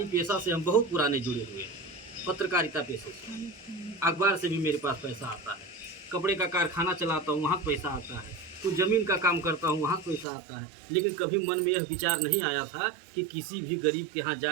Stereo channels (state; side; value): drops out; left; at 10.2 s